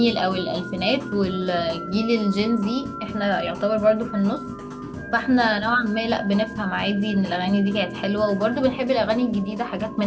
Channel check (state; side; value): identical; both; correlation 1.00